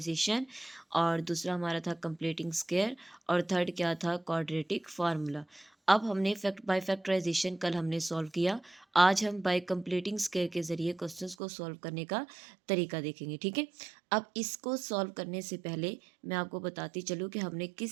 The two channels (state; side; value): drops out; left; at 11.4 s